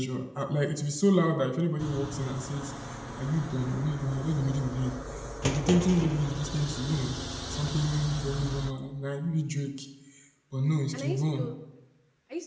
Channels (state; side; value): identical; both; correlation 1.00